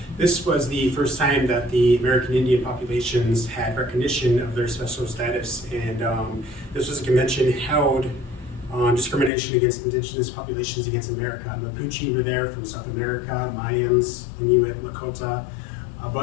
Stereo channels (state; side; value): drops out; right; at 9.3 s